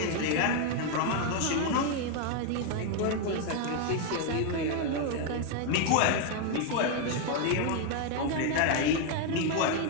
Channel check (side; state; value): both; different; correlation 0.01